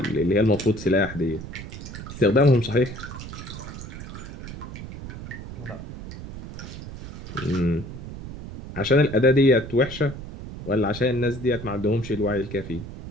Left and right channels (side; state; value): right; noise; rumble, 11 dB below the sound